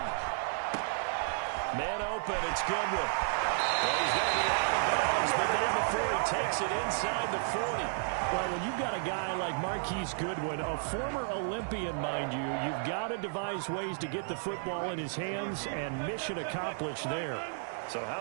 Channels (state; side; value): silent; left; 56 dB below the other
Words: Man open, it's Goodwin. Well, he's going to be out of bounds, but not before he takes it inside the 40. Well, when you've got a guy like Marquise Goodwin, a former Olympian, mind you, you've got to devise ways to get the football in his hands, and mission accomplished there. So how